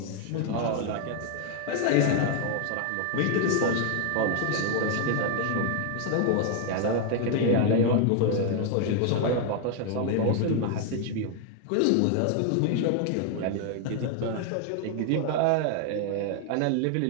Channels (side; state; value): both; different; correlation 0.00